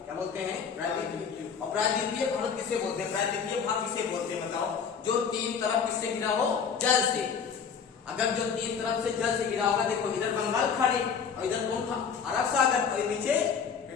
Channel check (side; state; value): right; quieter; 6.5 dB